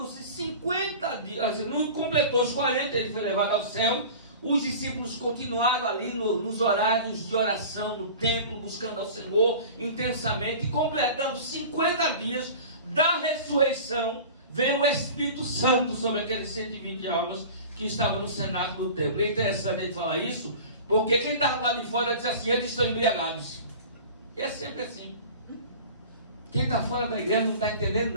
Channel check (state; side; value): inverted; both; correlation -0.38